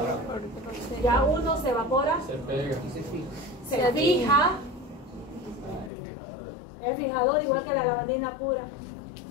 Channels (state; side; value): drops out; right; at 5.9 s